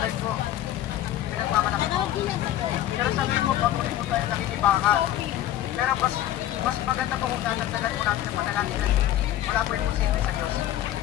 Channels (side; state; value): right; quieter; 12.9 dB